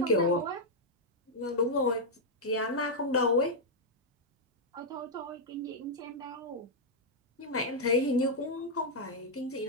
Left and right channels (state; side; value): normal; both; correlation -0.04